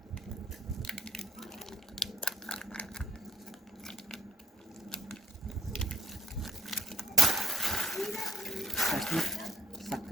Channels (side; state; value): both; normal; correlation 0.66